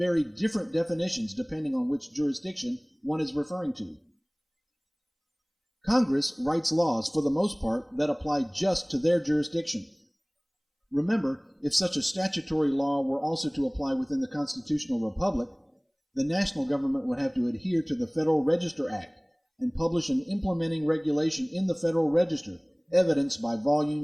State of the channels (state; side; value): identical; both; correlation 1.00